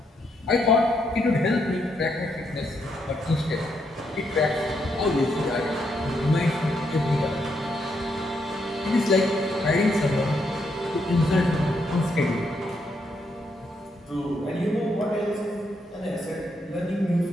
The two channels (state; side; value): normal; both; correlation 0.77